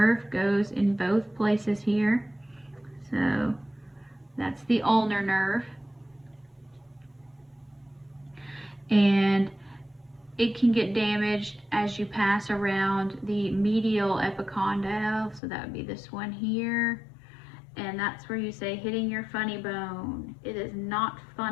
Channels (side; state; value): right; drops out; at 15.4 s